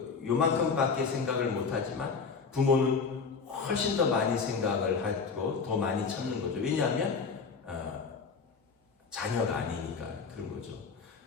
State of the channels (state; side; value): quieter; right; 5.2 dB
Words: 요만큼밖에 생각을 못 하지만 부모는 훨씬 더 많이 생각을 하고 더 많이 참는 거죠. 왜냐하면 자녀가 아니니까 그런 거죠.